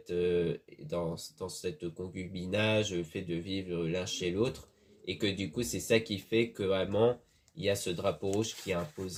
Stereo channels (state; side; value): identical; both; correlation 1.00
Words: concubinage, le fait de vivre l'un chez l'autre, et que du coup c'est ça qui fait que vraiment il y a ce drapeau rouge qui est